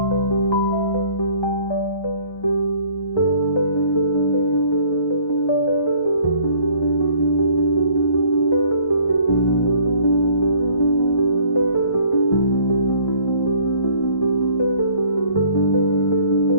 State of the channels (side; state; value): right; late; 1.2 ms